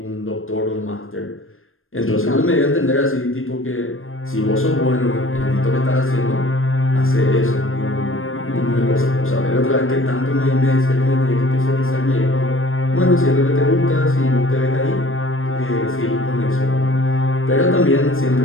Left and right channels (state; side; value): late; right; 0.60 ms